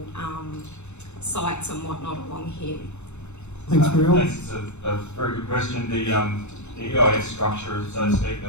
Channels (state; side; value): late; right; 0.82 ms